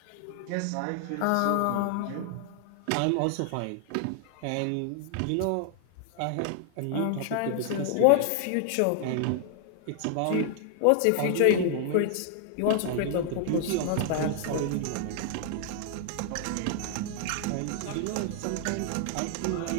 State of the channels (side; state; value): both; different; correlation 0.00